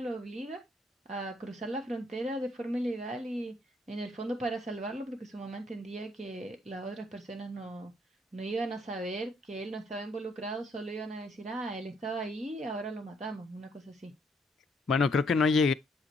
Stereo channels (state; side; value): normal; both; correlation 0.70